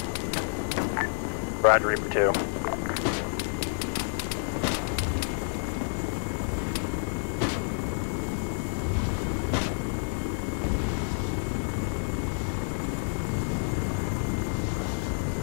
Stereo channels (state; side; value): silent; right; digital silence